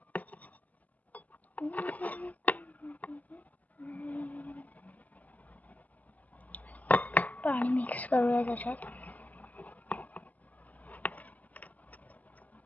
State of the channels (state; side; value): late; right; 0.077 ms